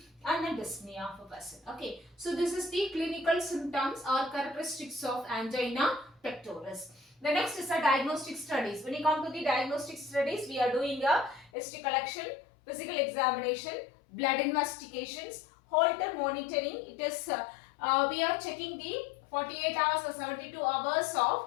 and then dyspnea of a person. Okay, so this is the clinical symptoms or characteristics of angina pectoris. The next is a diagnostic studies. When you come to the diagnostic studies, we are doing a history collection, physical examination, blood investigations, Holter monitoring. It is we are checking the 48 hours or 72 hours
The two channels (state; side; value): drops out; right; at 11.5 s